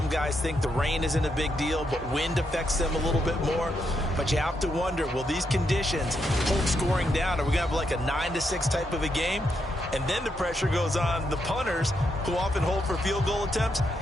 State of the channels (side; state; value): both; normal; correlation 0.80